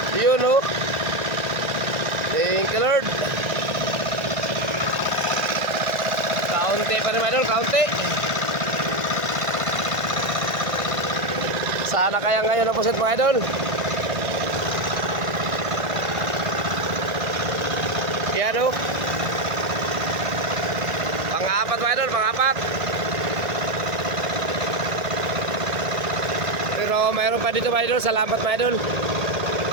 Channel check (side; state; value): left; late; 1.5 ms